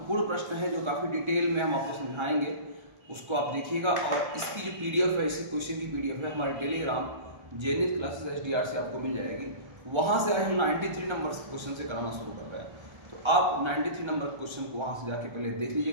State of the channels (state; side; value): late; left; 1.3 ms